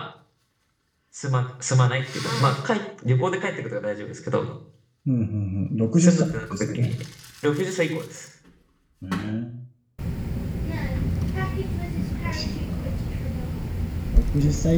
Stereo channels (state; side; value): identical; both; correlation 1.00